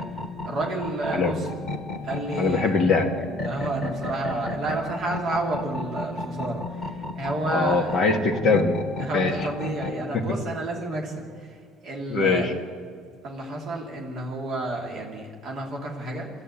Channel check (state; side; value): normal; both; correlation 0.54